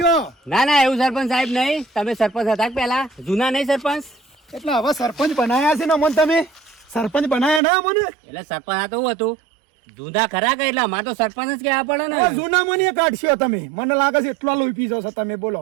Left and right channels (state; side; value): drops out; left; at 7.6 s